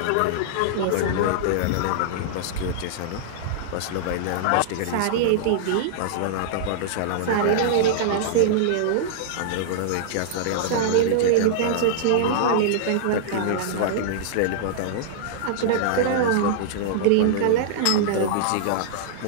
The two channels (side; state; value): both; different; correlation -0.02